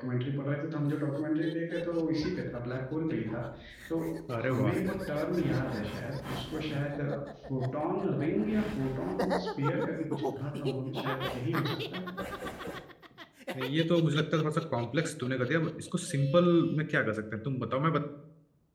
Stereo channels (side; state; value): both; identical; correlation 1.00